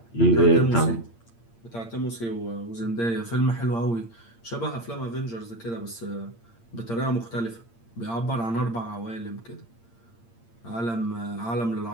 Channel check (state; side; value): late; right; 8.7 ms